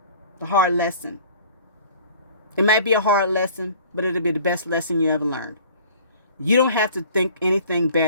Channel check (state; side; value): inverted; both; correlation -0.49